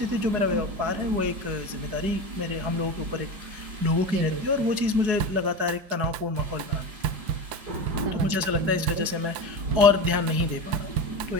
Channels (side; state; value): left; late; 4.8 ms